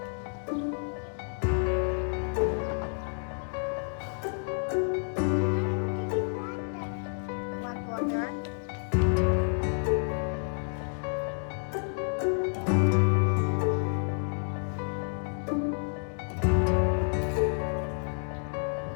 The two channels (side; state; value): right; silent; 58 dB below the other